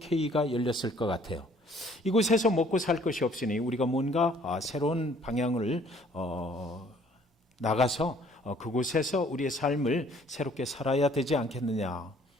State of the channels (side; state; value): both; normal; correlation 0.59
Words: 열렸을 것 같아요. 이곳에서 먹고 살 것이 없으니 우리가 뭔가 새로운 방향을 나가서 그곳에서 우리의 삶을 새롭게 살아야 되지 않겠느냐,